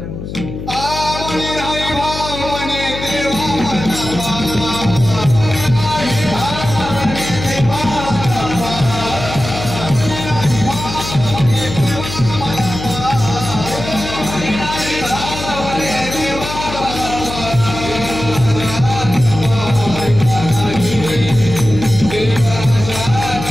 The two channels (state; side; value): noise; left; hum, 8 dB below the sound